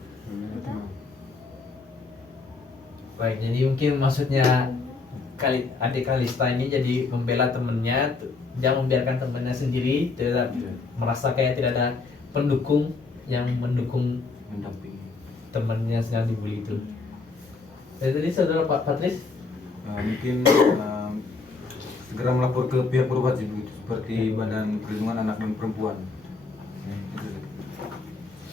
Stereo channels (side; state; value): right; quieter; 4.2 dB